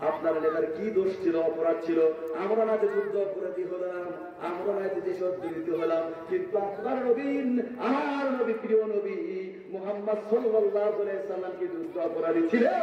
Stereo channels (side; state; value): both; identical; correlation 1.00